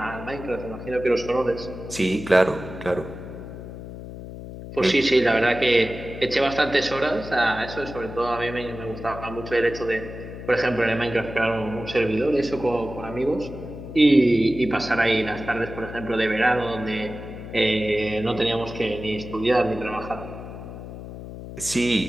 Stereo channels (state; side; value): noise; left; hum, 11 dB below the sound